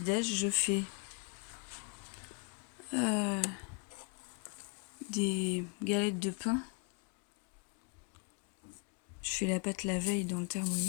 déj, je fais des galettes de pain. Je fais la pâte la veille dans le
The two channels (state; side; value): quieter; right; 34.3 dB